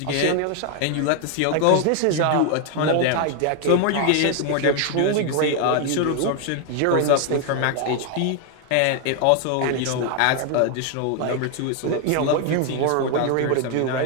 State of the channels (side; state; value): both; different; correlation 0.00